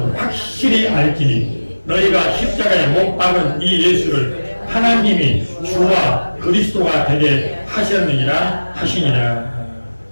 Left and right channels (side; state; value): both; inverted; correlation -1.00